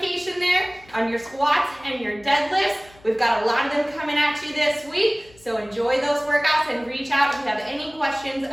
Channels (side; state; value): left; noise; hum, 26 dB below the sound